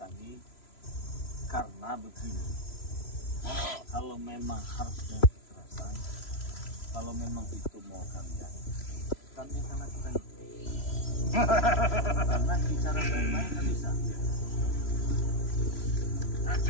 karena begini. Kalau memang harus dengan kekerasan, kalau memang itu mau kalian, kami akan lakukan itu. Karena bicara baik-baik kan bisa.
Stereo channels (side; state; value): right; late; 3.0 ms